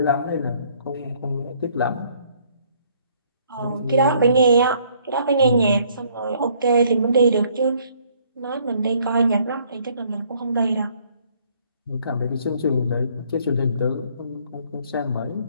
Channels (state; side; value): inverted; both; correlation -0.63